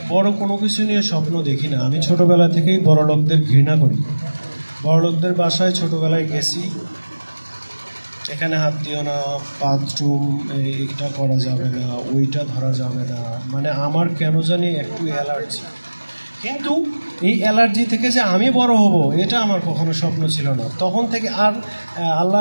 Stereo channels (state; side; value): inverted; both; correlation -1.00